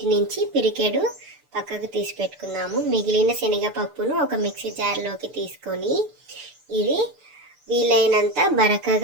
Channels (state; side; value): late; left; 6.8 ms